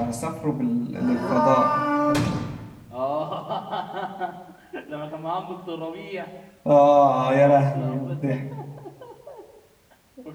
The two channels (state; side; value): identical; both; correlation 1.00